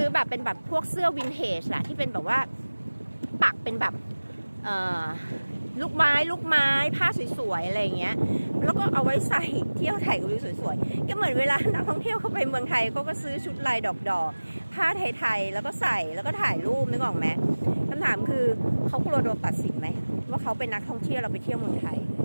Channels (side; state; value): both; inverted; correlation -1.00